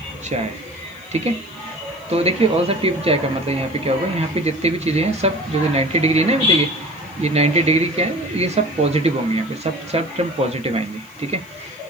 चाय, ठीक है। तो देखिए ऑल सब टी चाय का मतलब यहाँ पे क्या होगा, यहाँ पे जितनी भी चीज़ें हैं सब जो 90 डिग्री है ना, देखिए ये 90 डिग्री क्या है, ये सब पॉजिटिव होंगे, यहाँ पे सब टर्म पॉजिटिव आएंगे, ठीक है।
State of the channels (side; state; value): left; noise; hiss, 28 dB below the sound